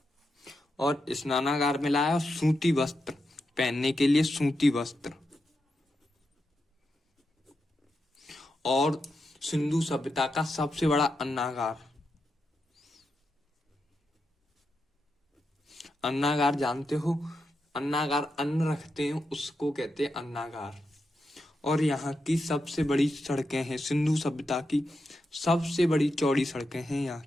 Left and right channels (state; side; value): normal; both; correlation 0.86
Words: और स्नानागार मिला है और सूती वस्त्र, पहनने के लिए सूती वस्त्र। और सिंधु सभ्यता का सबसे बड़ा अन्नागार, अन्नागार जानते हो? अन्नागार अन्न रखते हैं उसको कहते हैं अन्नागार। और यहाँ की सबसे बड़ी सड़कें हैं, सिंधु सभ्यता की सबसे बड़ी चौड़ी सड़कें हैं यहाँ